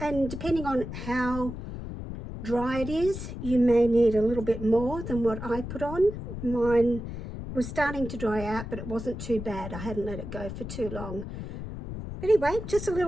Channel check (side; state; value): left; noise; rumble, 8 dB below the sound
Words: And depending on how dry it is, you may need a little bit more than what I put on. Mine was starting to dry out, but it wasn't too bad. I hadn't let it go for too long. Anyway, just a